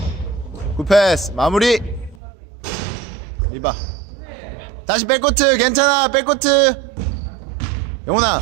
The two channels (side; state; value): left; drops out; at 2.2 s